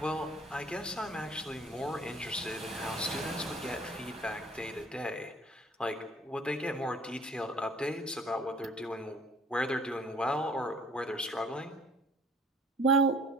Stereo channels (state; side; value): normal; both; correlation 0.54